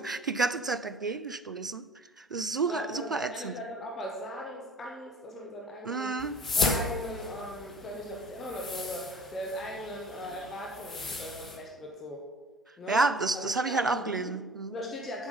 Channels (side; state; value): both; normal; correlation 0.46